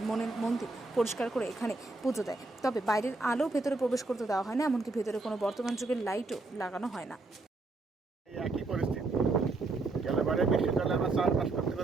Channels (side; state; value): left; quieter; 3.3 dB